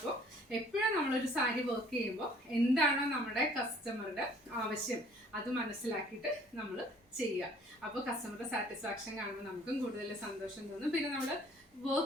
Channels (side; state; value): both; normal; correlation 0.56